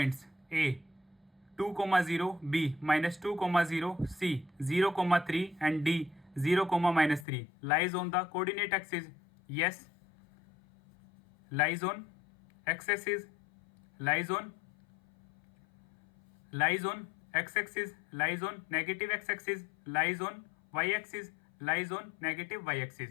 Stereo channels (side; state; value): right; drops out; at 7.2 s